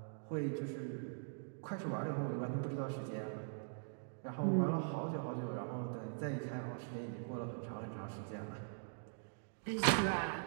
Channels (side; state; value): left; silent; digital silence